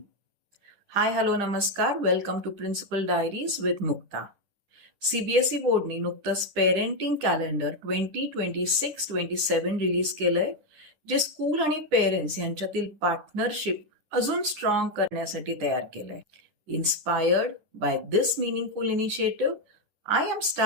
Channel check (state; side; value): late; left; 10 ms